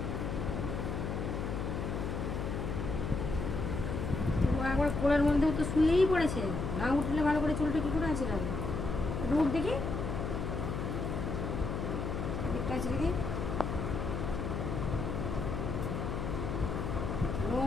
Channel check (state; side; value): noise; left; hum, 3 dB below the sound